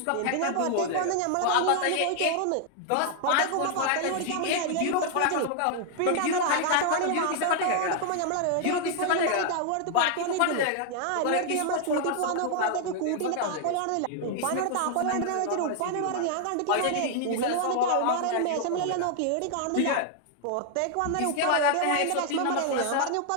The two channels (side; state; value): both; different; correlation 0.00